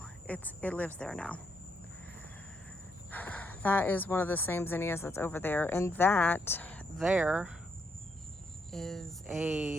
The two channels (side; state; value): both; normal; correlation 0.77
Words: it lives there now. That is one of the same zinnias that's over there, and that there is